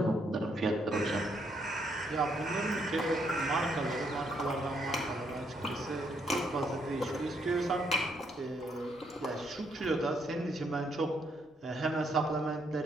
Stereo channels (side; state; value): both; normal; correlation 0.73